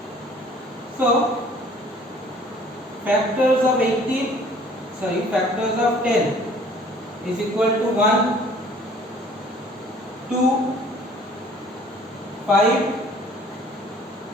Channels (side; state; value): both; normal; correlation 0.54